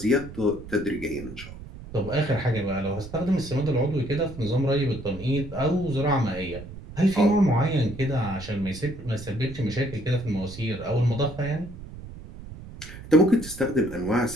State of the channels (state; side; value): noise; right; rumble, 14 dB below the sound